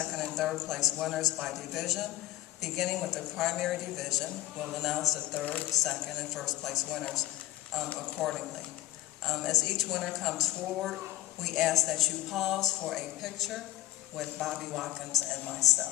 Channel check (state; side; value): quieter; right; 15.4 dB